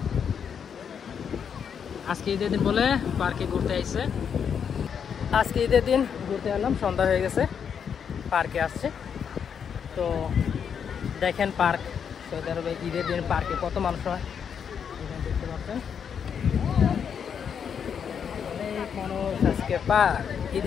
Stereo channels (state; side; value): quieter; right; 7.4 dB